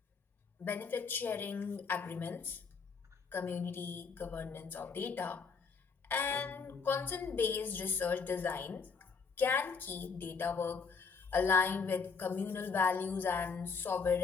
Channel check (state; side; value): quieter; right; 5.3 dB